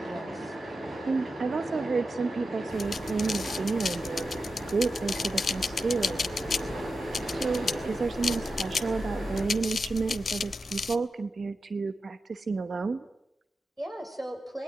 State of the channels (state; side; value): normal; both; correlation 0.90